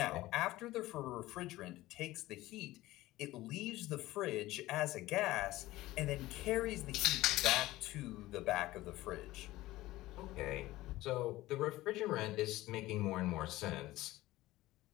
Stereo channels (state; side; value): quieter; right; 17.3 dB